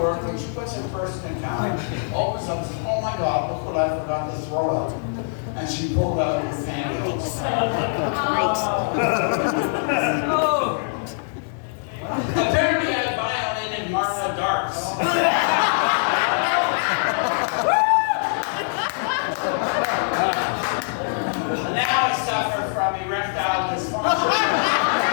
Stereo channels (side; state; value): right; silent; digital silence